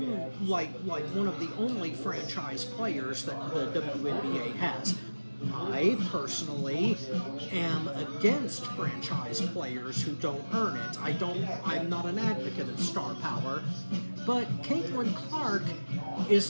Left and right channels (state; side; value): inverted; both; correlation -1.00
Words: one of the only franchise players that the WNBA has. I personally am against franchise players who don't earn it. I'm not an advocate of star power, but Caitlyn Clark